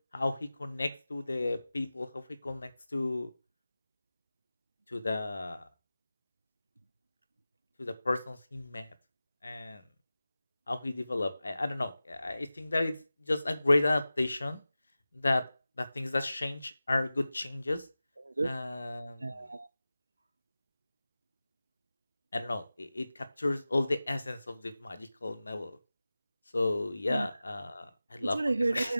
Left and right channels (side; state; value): both; inverted; correlation -0.96